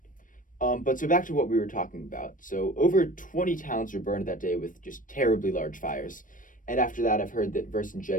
But so back to what we were talking about. So over 20 towns were burned that day with just terribly large fires. And after that, I've heard that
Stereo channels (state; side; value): late; right; 0.38 ms